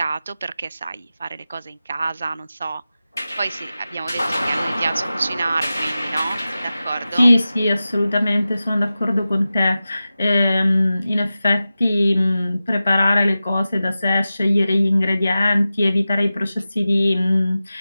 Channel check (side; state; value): both; inverted; correlation -0.94